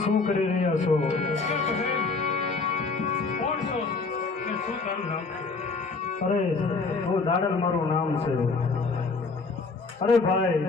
શું કરી રહ્યા છો? કોણ છો અને શું તારું નામ છે? અરે હું દાડલ મારું નામ છે. અરે ભાઈ,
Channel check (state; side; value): quieter; right; 4.2 dB